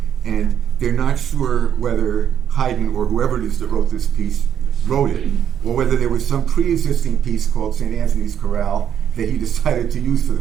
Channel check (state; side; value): quieter; left; 9.1 dB